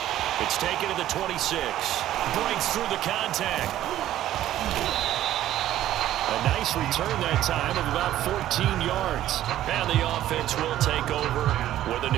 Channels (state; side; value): quieter; left; 13.0 dB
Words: It's taken to the 26. Breaks through the contact. A nice return that time of about 14 yards. And the offense will take over with a